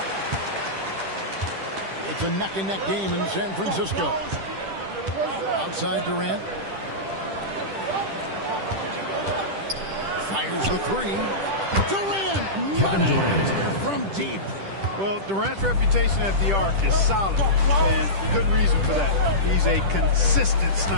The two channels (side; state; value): left; late; 10 ms